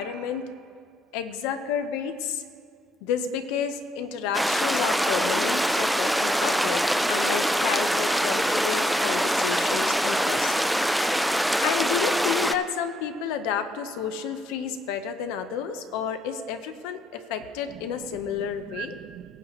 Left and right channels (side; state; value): both; normal; correlation 0.74